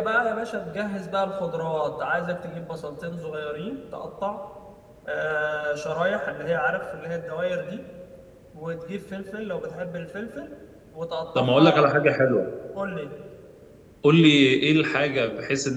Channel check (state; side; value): identical; both; correlation 1.00